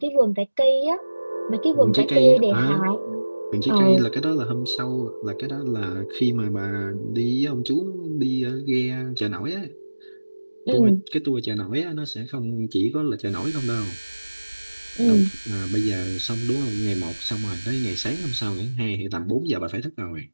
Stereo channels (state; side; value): inverted; both; correlation -1.00